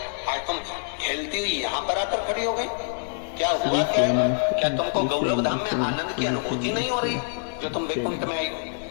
आज तुम खेलती हुई यहाँ पर आकर खड़ी हो गई, क्या हुआ, क्या है? क्या तुमको गौलोक धाम में आनंद की अनुभूति नहीं हो रही जो तुम वैकुंठ में आई हो?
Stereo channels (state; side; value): silent; right; digital silence